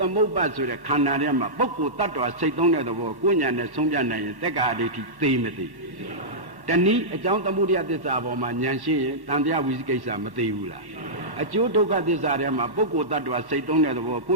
မုပ္ပါဆိုတဲ့ခန္ဓာထဲမှာပုဂ္ဂိုလ်တ attva စိတ်သုံးတဲ့သဘောကိုဉာဏ်နဲ့ဆုံးဖြတ်နိုင်ရင်တက္ကာအဋ္ဌိသိမသိတနည်းအကြောင်းသမုဒယသစ္စာပေါ်မှာဉာဏ်ရှိရင်တန်တရားဝိသိကိစ္စမသိဘူးလားအကျိုးဒုက္ခသစ္စာထဲမှာပုဂ္ဂိုလ်တ attva စိတ်သုံးတဲ့သဘောကိ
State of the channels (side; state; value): left; late; 1.1 ms